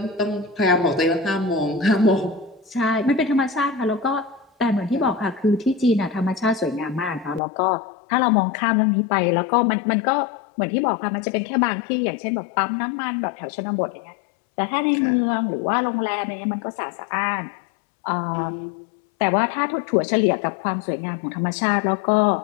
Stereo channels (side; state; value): right; drops out; at 7.4 s